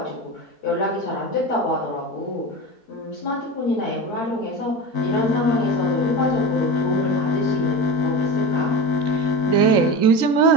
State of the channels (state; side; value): late; right; 3.8 ms